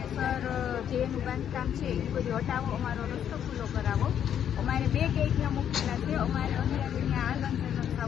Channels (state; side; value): quieter; right; 9.4 dB